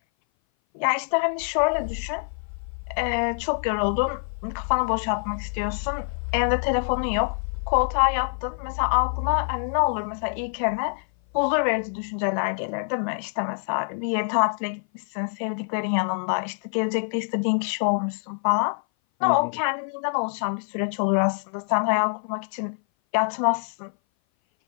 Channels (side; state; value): right; silent; 58 dB below the other